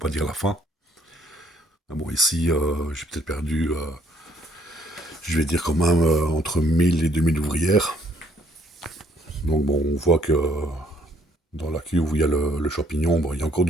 dire la fin. Ah bon, ici, j'ai peut-être perdu, je vais dire quand même, entre 1000 et 2000 ouvrières. Donc bon, on voit que dans la cuve où il y a le champignon, il y a encore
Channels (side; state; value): both; normal; correlation 0.64